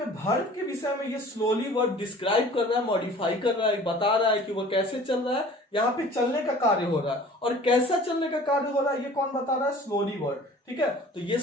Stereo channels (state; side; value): normal; both; correlation 0.47